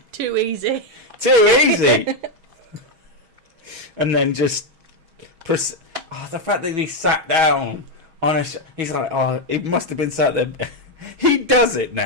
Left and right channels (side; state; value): left; late; 6.2 ms